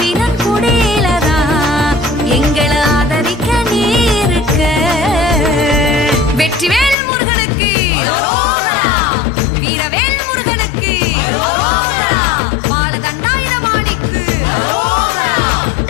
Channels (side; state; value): right; drops out; at 7.0 s